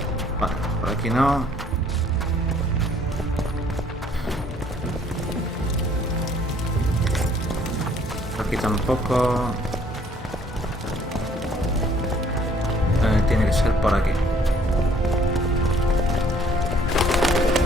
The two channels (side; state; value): both; normal; correlation 0.60